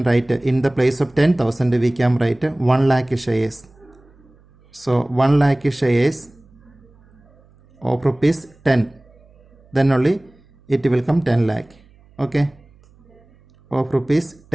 write in the place of 10,000 we can write 1 lakh shares. So 1 lakh shares of rupees 10, then only it will come 10 lakh. Okay, of rupees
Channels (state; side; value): noise; right; hum, 29 dB below the sound